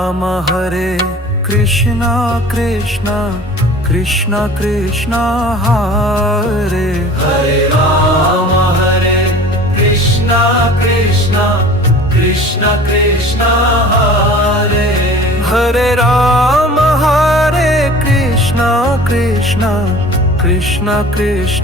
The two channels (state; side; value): normal; both; correlation 0.43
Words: Krishna Krishna Krishna Krishna Hare Ram Hare Krishna Krishna Krishna Krishna Hare Ram Hare Krishna Krishna Krishna